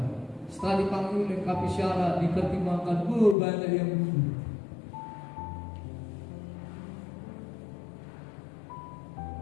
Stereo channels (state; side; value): drops out; right; at 3.4 s